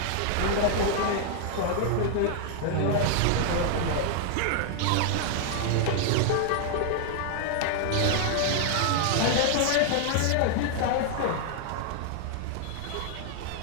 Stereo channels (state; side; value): different; both; correlation 0.00